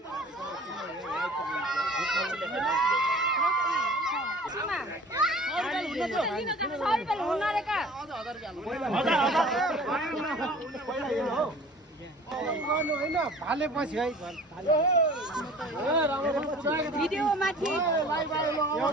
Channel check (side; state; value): both; normal; correlation 0.45